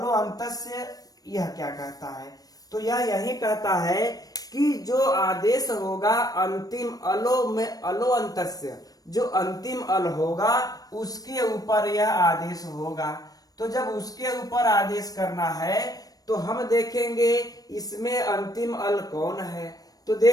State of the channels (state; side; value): late; right; 0.18 ms